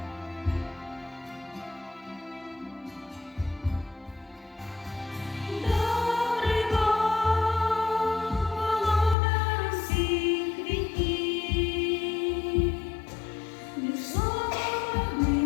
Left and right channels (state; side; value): drops out; right; at 9.2 s